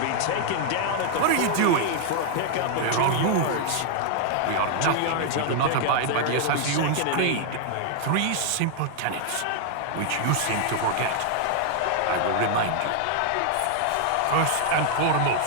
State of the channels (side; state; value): both; different; correlation 0.00